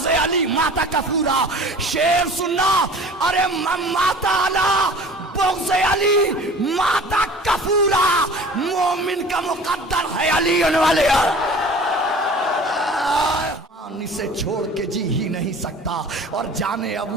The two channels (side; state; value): both; normal; correlation 0.43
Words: علی ماتا کفورا، شیر سننا، ارے ماتا علی بغض علی ماتا کفورا، مومن کا مقدر ہے علی ولی اللہ، اسے چھوڑ کے جی ہی نہیں سکتا، اور جانے